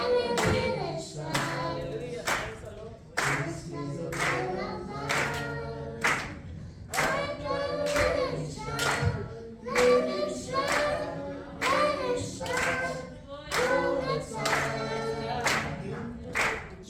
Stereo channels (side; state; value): both; identical; correlation 1.00